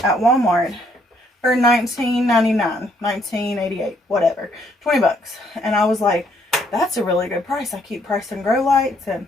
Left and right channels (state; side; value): normal; both; correlation 0.69